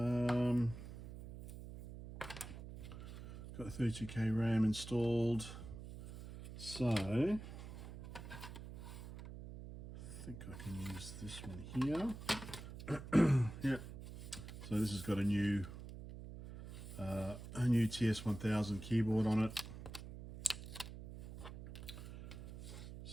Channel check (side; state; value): right; noise; hum, 11 dB below the sound